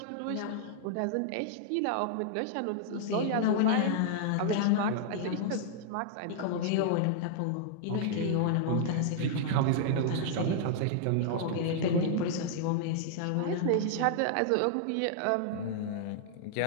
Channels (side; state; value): both; different; correlation -0.01